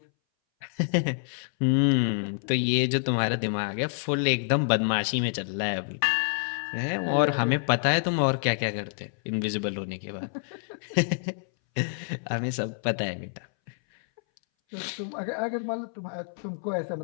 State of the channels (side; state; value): right; silent; 60 dB below the other